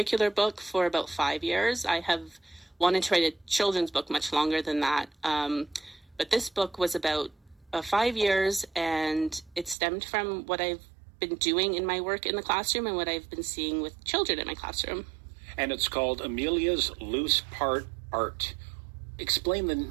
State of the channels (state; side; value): drops out; left; at 9.8 s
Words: book for about 5 years. I have wanted to write a children's book much longer than that. But this book was about 5 years, and it stemmed from what I've been doing in my work in the classroom and what I've been seeing with children in my classroom. And it's called Amelia's Loose Part Art. Explain